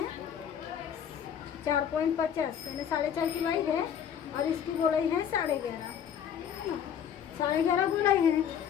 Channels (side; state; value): right; quieter; 8.7 dB